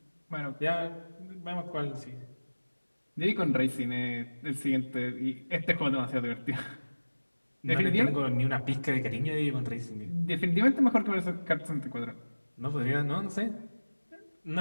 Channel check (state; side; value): inverted; both; correlation -1.00